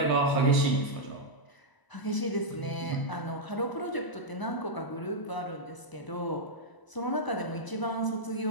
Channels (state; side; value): late; right; 1.0 ms